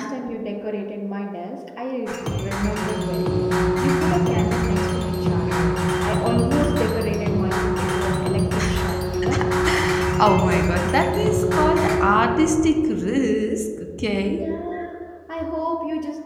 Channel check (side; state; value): both; identical; correlation 1.00